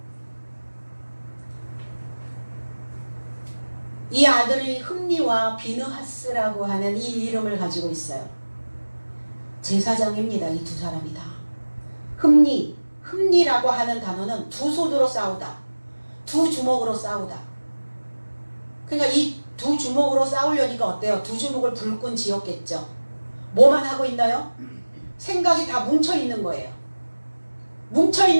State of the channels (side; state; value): both; inverted; correlation -1.00